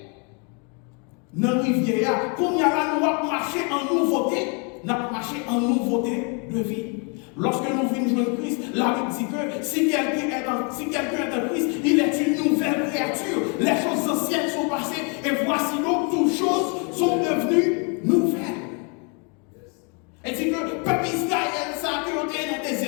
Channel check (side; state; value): right; quieter; 35.8 dB